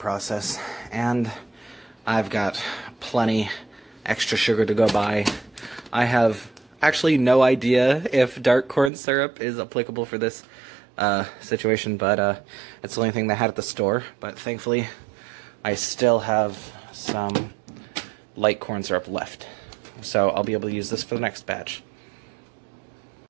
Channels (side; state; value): left; drops out; at 8.9 s